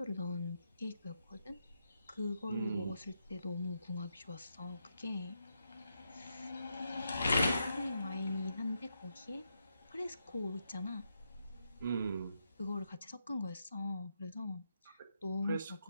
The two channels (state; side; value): inverted; both; correlation -0.82